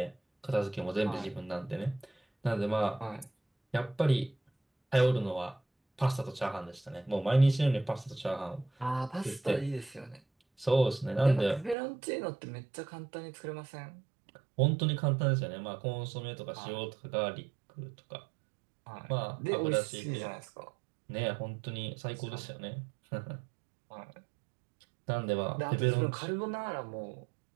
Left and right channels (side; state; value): left; drops out; at 11.8 s